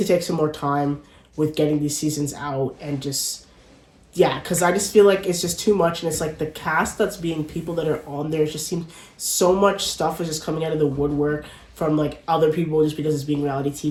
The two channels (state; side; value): identical; both; correlation 1.00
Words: take some more time with getting these seasons out and just... Yeah, because I just feel like it's just too much, and it's like the cast that's being people that are on there, it just seems so much stuff is just coming out of the woodwork from, like, other people just because it's being reality